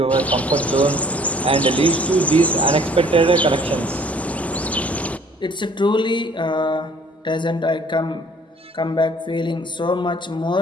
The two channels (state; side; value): normal; both; correlation 0.56